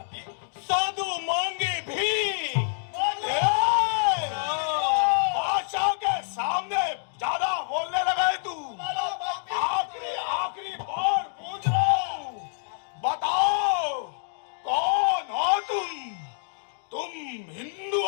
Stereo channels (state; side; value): silent; right; digital silence